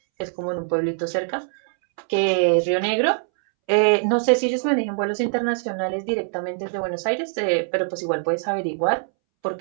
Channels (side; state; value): left; silent; 64 dB below the other